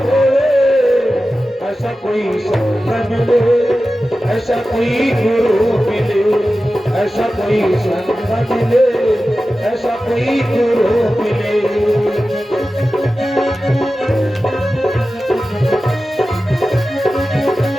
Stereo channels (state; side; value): normal; both; correlation 0.94